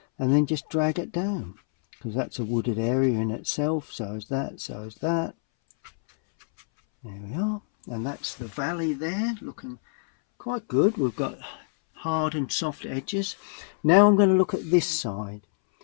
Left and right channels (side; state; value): right; silent; 61 dB below the other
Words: and then just drag it down, because that's a wooded area in itself. So is that, so is that. There we are, and that's the valley there, looking quite good. We've got hard and soft edges. Now I'm going to look at this side.